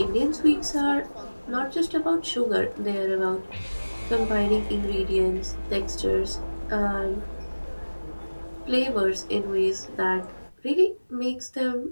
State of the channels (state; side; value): inverted; both; correlation -1.00